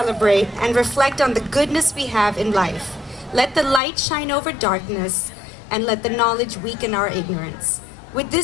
and reflect on the goodness we have in life. Let the light shine over darkness, and let the knowledge weaken our ignorance. With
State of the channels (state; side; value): drops out; right; at 3.8 s